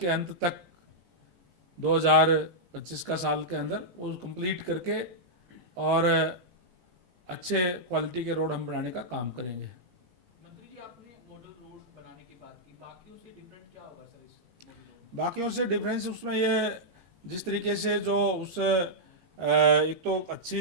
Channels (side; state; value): left; late; 17 ms